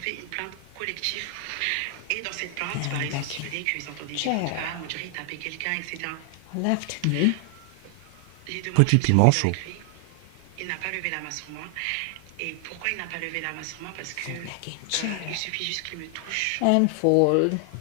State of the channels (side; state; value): both; different; correlation 0.00